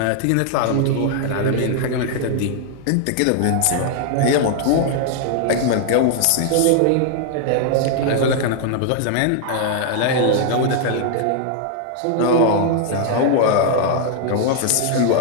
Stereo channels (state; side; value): different; both; correlation 0.00